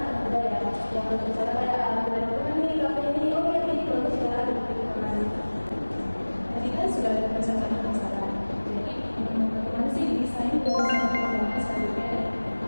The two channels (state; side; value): inverted; both; correlation -1.00